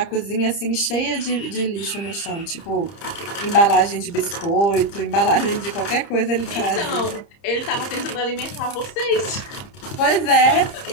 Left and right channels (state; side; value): late; right; 30 ms